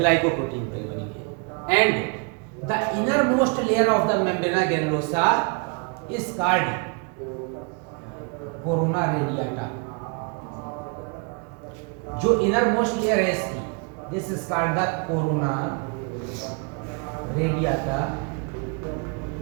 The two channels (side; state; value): left; quieter; 34.8 dB